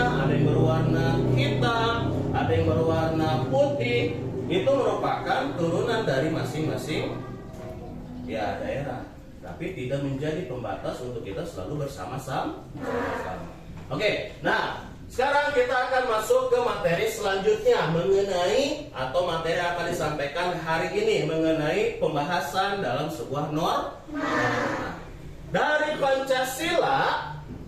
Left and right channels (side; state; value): both; identical; correlation 1.00